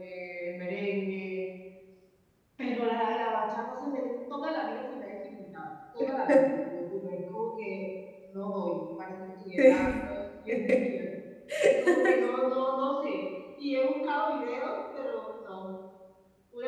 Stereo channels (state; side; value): identical; both; correlation 1.00